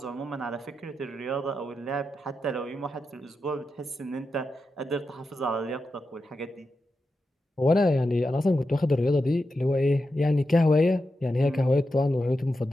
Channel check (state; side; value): normal; both; correlation 0.89